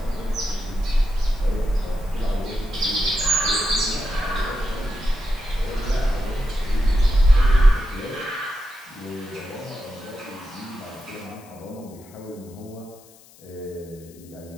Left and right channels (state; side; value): noise; left; hiss, 25 dB below the sound